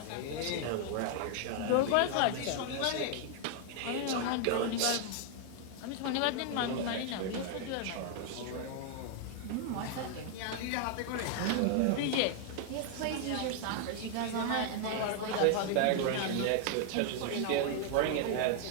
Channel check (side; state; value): both; different; correlation 0.00